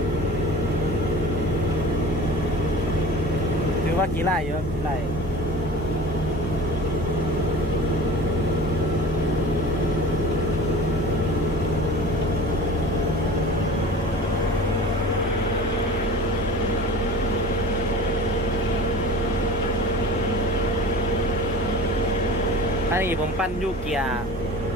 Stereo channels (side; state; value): both; normal; correlation 0.38